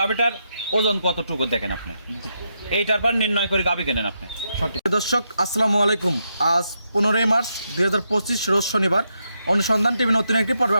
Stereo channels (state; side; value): inverted; both; correlation -0.83